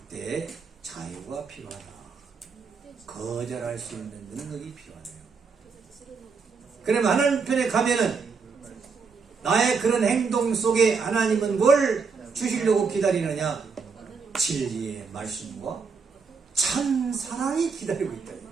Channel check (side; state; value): left; quieter; 5.2 dB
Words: 자유가 필요하다. 거절할 수 있는 능력이 필요하네요. 그럼 하나님 편에 가면은 나의 그런 행동 속에 하나님은 뭘 주시려고 기다리느냐? 진리의 말씀과 참 사랑이 기다리고 있다.